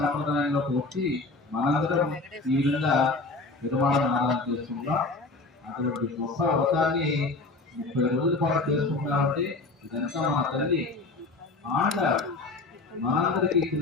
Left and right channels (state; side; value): quieter; right; 3.5 dB